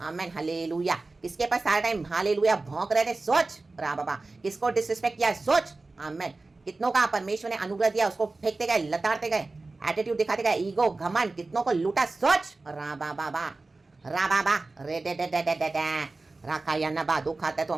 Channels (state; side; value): quieter; left; 3.4 dB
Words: हालेलुया। किसके पास सारा टाइम हालेलुया भौंक रहे थे, सोच। रा बाबा। किसको डिसरिस्पेक्ट किया है, सोच। आमेन। कितनों का परमेश्वर ने अनुग्रह दिया उसको फेंकते गए, लताड़ते गए, एटीट्यूड दिखाते गए, ईगो घमंड, कितनों को लूटा। सोच रा बाबा रे दे दे दे दे दे दे रखा या नबा। दुख आता है तो